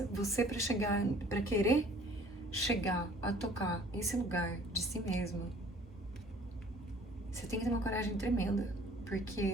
você pra querer chegar a tocar esse lugar de si mesmo, você tem que ter uma coragem tremenda,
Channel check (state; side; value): normal; both; correlation 0.53